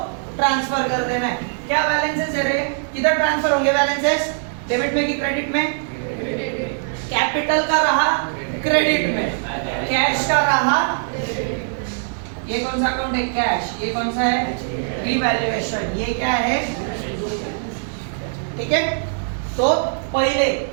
ट्रांसफर कर देना है। क्या बैलेंसेस है रे? किधर ट्रांसफर होंगे बैलेंसेस? डेबिट में कि क्रेडिट में? कैपिटल का रहा क्रेडिट में, कैश का रहा। ये कौन सा अकाउंट है? कैश। ये कौन सा है? रिवैल्यूएशन। ये क्या है? ठीक है। तो पहले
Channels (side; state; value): left; silent; digital silence